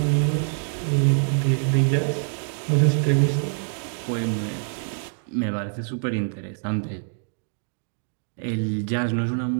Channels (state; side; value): silent; left; digital silence